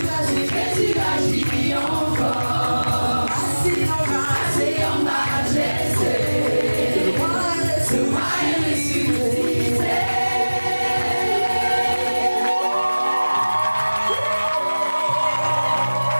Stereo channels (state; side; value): inverted; both; correlation -1.00